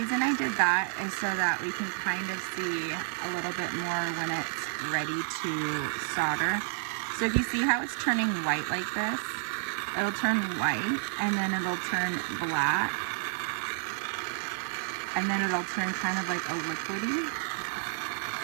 I did that is so that we can kind of see a little bit more when it's ready to solder. So if you see how it's turning white like this, it'll turn white, and then it'll turn black, and then it'll turn kind of like a liquidy.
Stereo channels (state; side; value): silent; left; 58 dB below the other